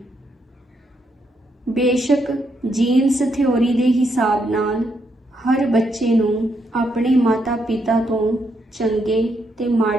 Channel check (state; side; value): normal; both; correlation 0.78